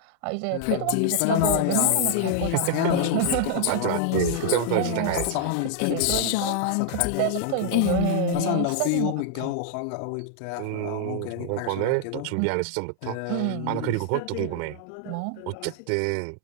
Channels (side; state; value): both; different; correlation 0.00